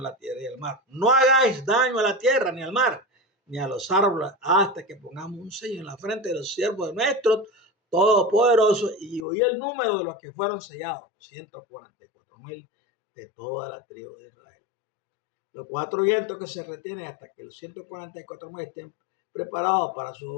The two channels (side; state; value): right; drops out; at 9.2 s